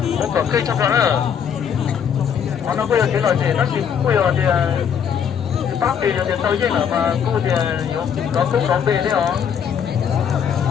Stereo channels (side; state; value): right; quieter; 7.8 dB